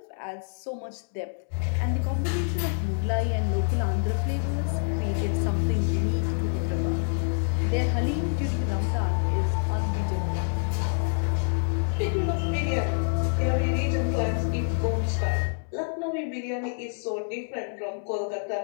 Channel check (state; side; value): silent; right; 60 dB below the other